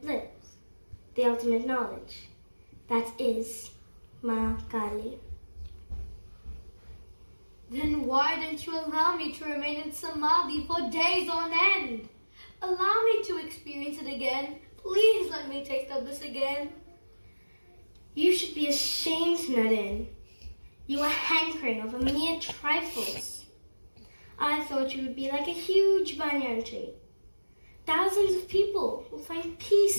bliss, the ultimate knowledge. That is Ma Kali. Then why don't you allow me to remain in Samadhi for days on end? Allow me to experience it again. Please let me taste of this again. You should be ashamed, Naren. You are hankering over mere trifles. I thought you would be like a huge banyan tree. Thousands of people will find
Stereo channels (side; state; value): both; inverted; correlation -1.00